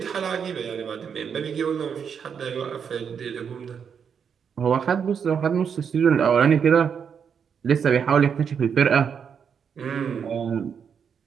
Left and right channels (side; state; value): left; quieter; 7.1 dB